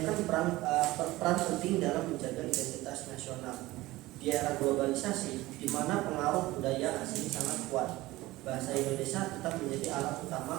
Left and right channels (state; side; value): quieter; left; 18.6 dB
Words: peran penting dalam menjaga identitas nasional. Di era globalisasi, di mana pengaruh budaya asing sangat kuat, bahasa Indonesia tetap menjadi alat